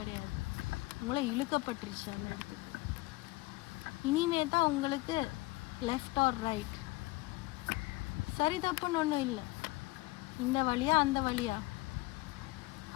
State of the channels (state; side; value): quieter; right; 20.5 dB